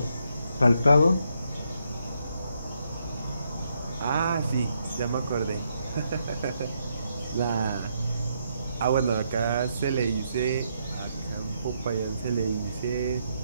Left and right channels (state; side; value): inverted; both; correlation -0.77